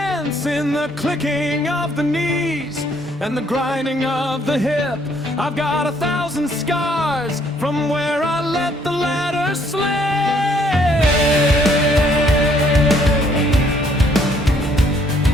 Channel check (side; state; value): both; normal; correlation 0.66